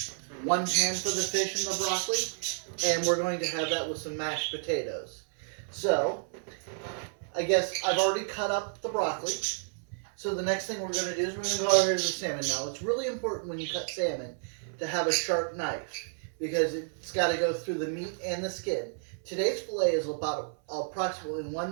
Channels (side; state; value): left; silent; 57 dB below the other